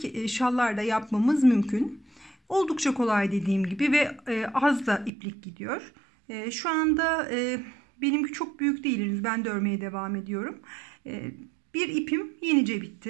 şallar da yapmamız mümkün. Oldukça kolay dediğim gibi ve az da iplik gidiyor. Şu anda benimki çok büyük değil, henüz ben de örmeye devam ediyorum. Bir ipim yenice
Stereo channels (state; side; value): drops out; left; at 5.1 s